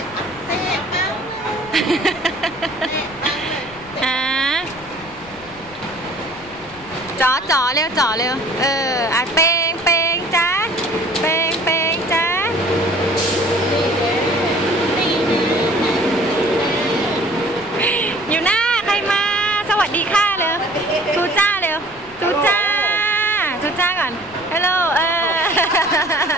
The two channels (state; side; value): noise; left; rumble, 22 dB below the sound